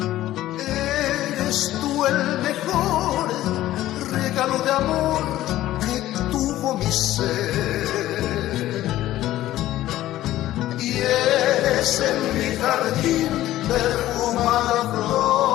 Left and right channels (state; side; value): quieter; right; 14.5 dB